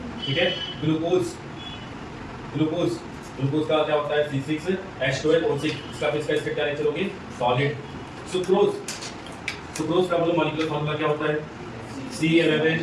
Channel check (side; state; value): both; identical; correlation 1.00